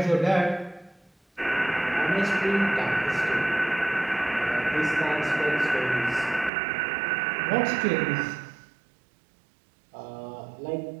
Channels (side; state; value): left; drops out; at 6.5 s